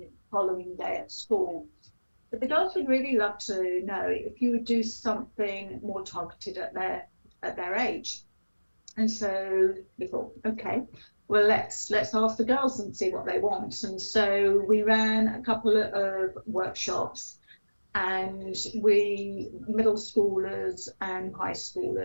the following day at school. But the girls would really love to know if you would do something more targeted at their age. And so we thought, okay, well, let's ask the girls and see what they want. And so we ran a couple of workshops, and middle schoolers and high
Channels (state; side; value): inverted; both; correlation -1.00